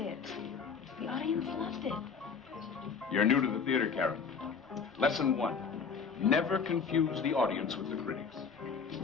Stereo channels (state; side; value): quieter; right; 5.9 dB